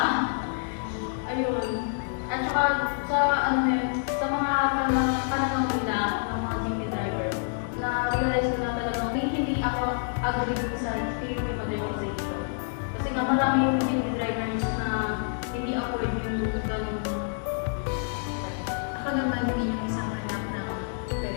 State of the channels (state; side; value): silent; right; digital silence